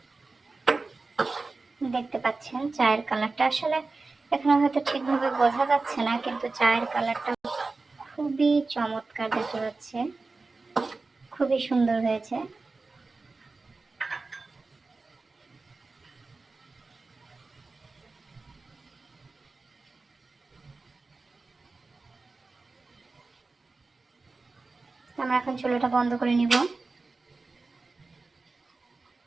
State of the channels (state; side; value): quieter; left; 3.7 dB